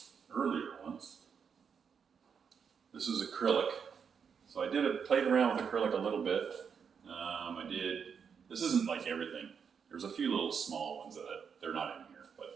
earlier ones. This is acrylic. So I played around with acrylic a little bit. This isn't like everything. There's a few little small ones that they're not in here,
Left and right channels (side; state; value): left; quieter; 6.7 dB